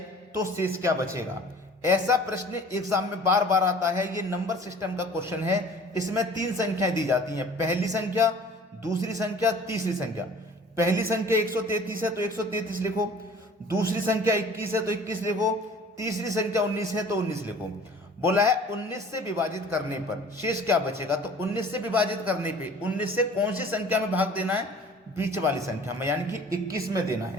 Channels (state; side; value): normal; both; correlation 0.48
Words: तो शेष क्या बचेगा। ऐसा प्रश्न एग्जाम में बार बार आता है। ये नंबर सिस्टम का क्वेश्चन है। इसमें 3 संख्याएं दी जाती हैं, पहली संख्या, दूसरी संख्या, तीसरी संख्या। पहली संख्या 133 है तो 133 लिखो, दूसरी संख्या 21 है तो 21 लिखो, तीसरी संख्या 19 है तो 19 लिखो। बोला है 19 से विभाजित करने पर शेष क्या बचेगा। तो 19 से विभाजित करने पे 19 से कौन सी संख्या में भाग देना है, बीच वाली संख्या में, यानी कि 21 में देना